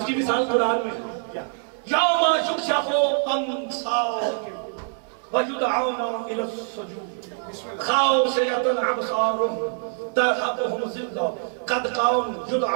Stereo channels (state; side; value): silent; left; 62 dB below the other